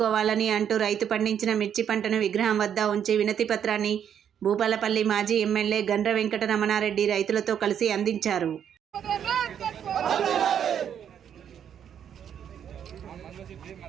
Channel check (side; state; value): left; quieter; 8.8 dB